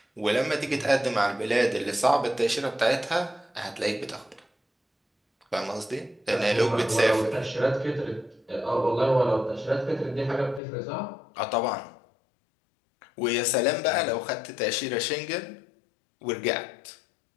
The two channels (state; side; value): drops out; right; at 10.6 s